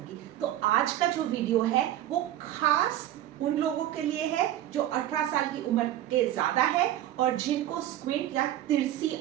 तो आज का जो वीडियो है वो खास उन लोगों के लिए है जो 18 साल की उम्र के ज्यादा है और जिनको स्क्विंट या तिरछी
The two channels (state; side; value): quieter; left; 12.9 dB